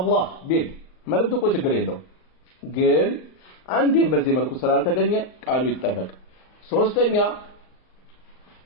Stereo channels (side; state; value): right; late; 38 ms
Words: ቢል መልእክቱ እኮ ችግር የለውም። ግን አንዴም በዚህ መልኩ ስላልተገኘ ቃሉ ይጠበቅ። ሶስተኛ